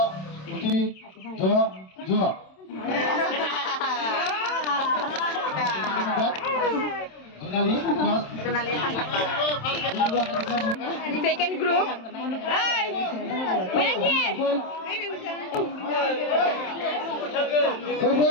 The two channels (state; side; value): late; right; 27 ms